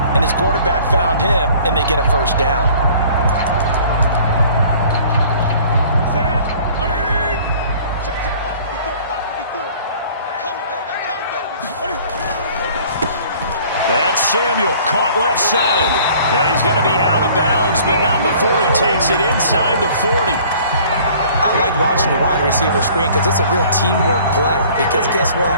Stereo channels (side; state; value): both; inverted; correlation -0.52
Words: and his quarterback found him, and they get a 1st down. That's Samuel, caught left side. And he's going to be out of bounds, but not before he takes it inside the 40. I like watching the wide receiver screen because it's a real teamwork play. Because guess what?